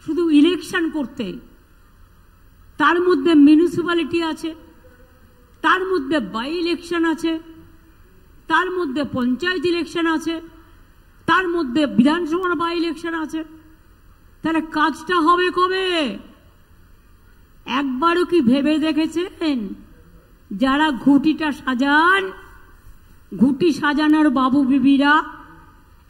শুধু ইলেকশন করতে। তার মধ্যে মিউনিসিপ্যালিটি আছে, তার মধ্যে বাই ইলেকশন আছে, তার মধ্যে পঞ্চায়েত ইলেকশন আছে, তার মধ্যে বিধানসভার বাই ইলেকশন আছে। তাহলে কাজটা হবে কবে? একবারও কি ভেবে দেখেছেন যারা ঘুঁটিটা সাজান, ঘুঁটি সাজানোর বাবু বিবিরা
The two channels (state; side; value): identical; both; correlation 1.00